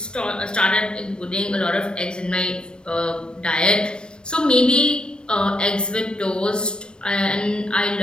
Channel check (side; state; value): right; late; 0.053 ms